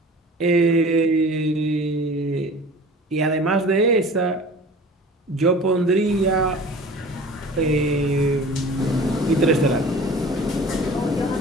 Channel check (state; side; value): normal; both; correlation 0.42